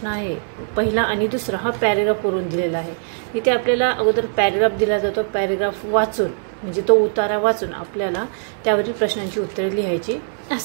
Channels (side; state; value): left; silent; digital silence